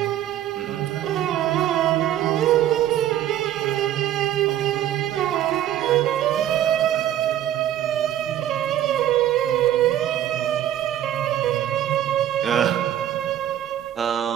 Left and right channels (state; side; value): quieter; left; 11.8 dB